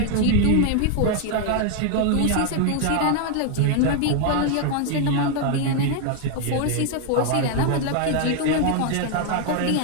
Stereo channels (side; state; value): both; different; correlation 0.00